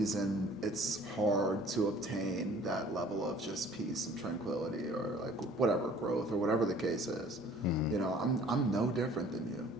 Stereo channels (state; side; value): normal; both; correlation 0.52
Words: it's hard to obtain that level of just peace and tranquility or like whatever growth or whatever the case is. You know, I'm no different than you